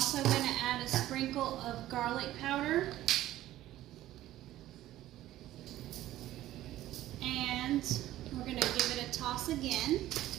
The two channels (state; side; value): quieter; left; 14.4 dB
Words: going to add a sprinkle of garlic powder. And we're going to give it a toss again.